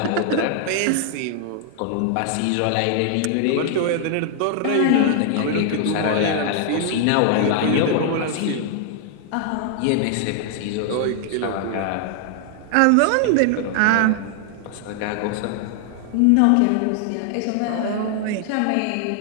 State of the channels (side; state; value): both; different; correlation 0.00